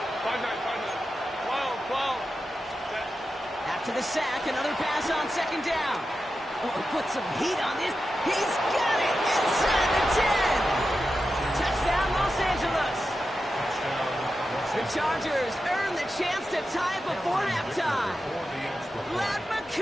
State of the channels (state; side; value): normal; both; correlation 0.90